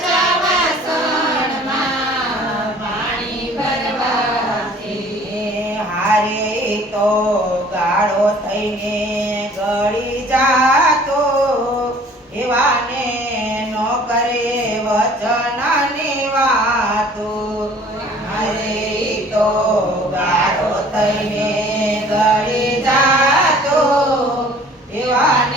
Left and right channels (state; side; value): normal; both; correlation 0.52